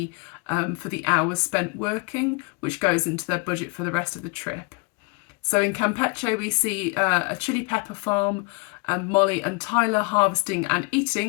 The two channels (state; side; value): quieter; right; 28.3 dB